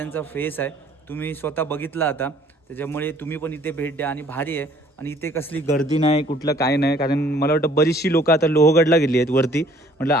फेस आहे. तुम्ही स्वतः बघितला आता, त्याच्यामुळे तुम्ही पण इथे भेट द्या. आणि भारी आहे. आणि इथे कसली गर्दी नाही, कुठलं काय नाही. कारण मला वाटतं बरीचशी लोकं आता लोहगडला गेली आहेत वरती. म्हटलं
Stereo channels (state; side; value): normal; both; correlation 0.57